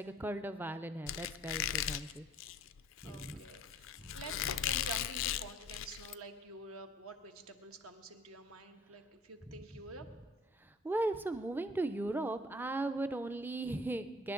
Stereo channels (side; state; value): both; normal; correlation 0.53